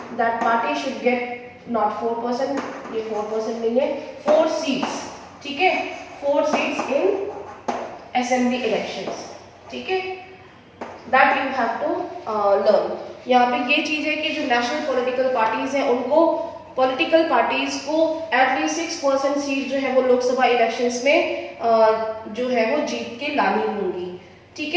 that party should get not 4%, ये 4% नहीं है, 4 सीट्स. ठीक है, 4 सीट्स इन असेंबली इलेक्शंस. ठीक है, that you have to learn. यहाँ पे ये चीज है कि जो नेशनल पॉलिटिकल पार्टीज हैं उनको, पॉलिटिकल पार्टीज को एटलीस्ट 6% सीट जो है वो लोकसभा इलेक्शंस में जो है वो जीत के लानी होंगी. ठीक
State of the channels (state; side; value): identical; both; correlation 1.00